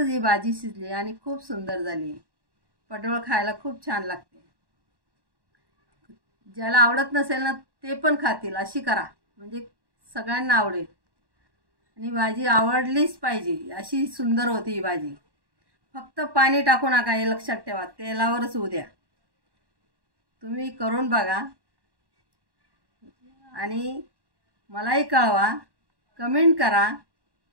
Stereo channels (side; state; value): left; late; 1.1 ms